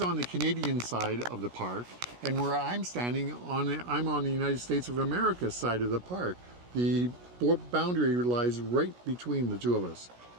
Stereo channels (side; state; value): left; late; 17 ms